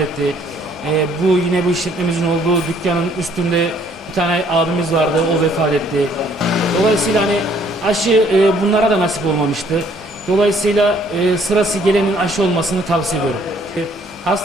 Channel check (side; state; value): both; normal; correlation 0.62